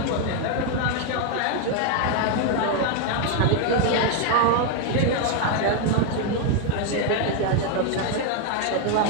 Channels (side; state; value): both; different; correlation 0.01